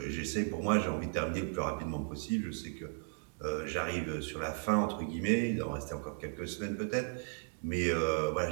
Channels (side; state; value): left; silent; 54 dB below the other